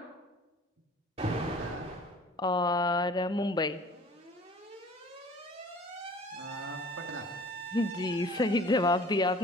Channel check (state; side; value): normal; both; correlation 0.48